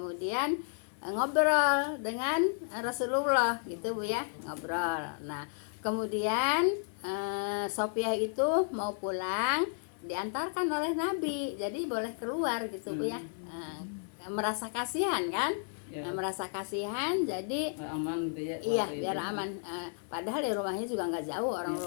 ngobrol dengan Rasulullah gitu Bu ya, ngobrol. Nah kemudian Sofiah itu mau pulang, diantarkan oleh Nabi, jadi boleh keluar gitu Bu ya. Merasa kasihan kan ya. Merasa kasihan, jadi aman gitu ya. Iya biar aman. Padahal di rumahnya juga nggak jauh, orang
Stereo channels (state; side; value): silent; right; digital silence